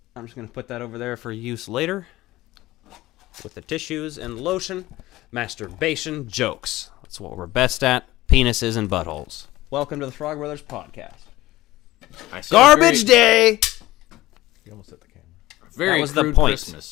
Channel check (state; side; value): quieter; right; 17.3 dB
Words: I'm just going to put that over there for use later. With the tissues and lotion. Masturbation jokes. That's what we're best at. Penises and buttholes. Welcome to the Frog Brothers podcast. Garbage day! You almost hit the camera. Very that was the crude point.